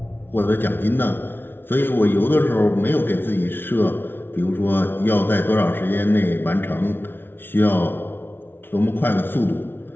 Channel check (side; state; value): right; late; 0.10 ms